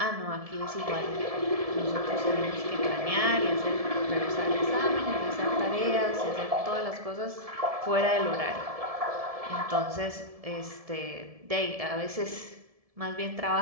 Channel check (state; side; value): late; left; 1.7 ms